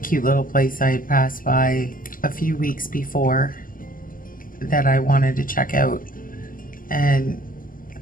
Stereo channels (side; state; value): right; late; 0.41 ms